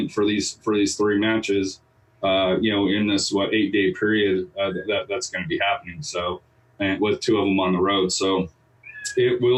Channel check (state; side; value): identical; both; correlation 1.00